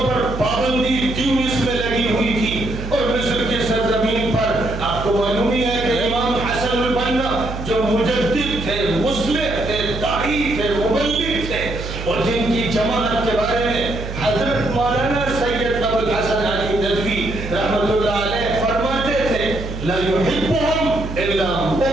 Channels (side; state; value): right; noise; hum, 8 dB below the sound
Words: پر پابندی تیونس میں لگی ہوئی تھی اور مصر کی سرزمین پر آپ کو معلوم ہی ہے کہ امام حسن البنا جو مجدد تھے, مصلح تھے, داعی تھے, مبلغ تھے اور جن کی جماعت کے بارے میں حضرت مولانا سید ابو الحسن علی ندوی رحمۃ اللہ علیہ فرماتے تھے لا يحبهم الا